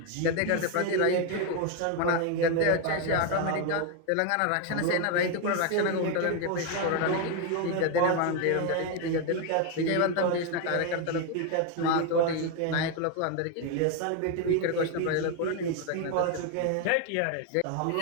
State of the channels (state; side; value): different; both; correlation 0.01